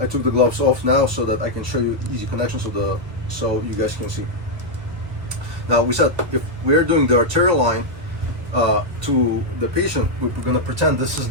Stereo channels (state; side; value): late; left; 1.6 ms